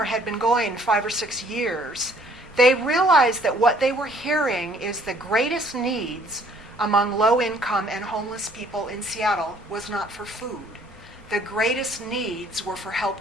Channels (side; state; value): both; normal; correlation 0.60